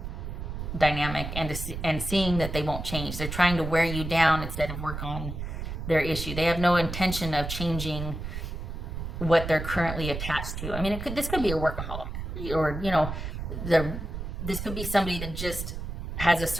dynamic, and seeing that they won't change. They're trying to wear you down instead of work on their issue. They have no intention of changing what they're currently attached to. I mean, this could be a workaholic, or this could be somebody that just has a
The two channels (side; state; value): right; noise; rumble, 6 dB below the sound